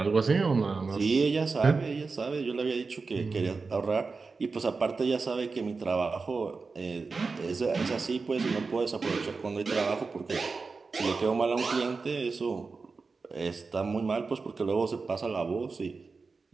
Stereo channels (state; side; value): quieter; left; 4.4 dB